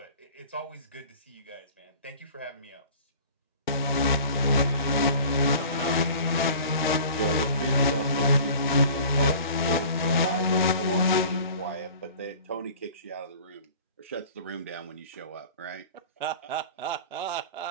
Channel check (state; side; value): inverted; both; correlation -0.44